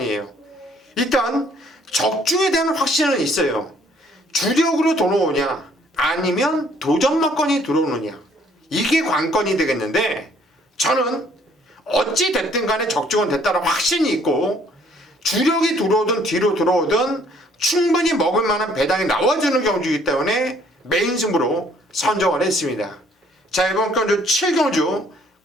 일단 적중에 대한 확신은 있어요. 주력으로 들어오냐 아니면 도전마건이 들어오느냐, 이게 관건이 되겠는데, 저는 어찌 됐든 간에 적중은 됐다는 확신이 있고 주력이 들어오든 뒤로 들어오든 충분히 먹을 만한 배당이 나와주는 경주이기 때문에 메인 승부로 선정을 했습니다. 자, 이번 경주 7경주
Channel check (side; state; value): both; normal; correlation 0.62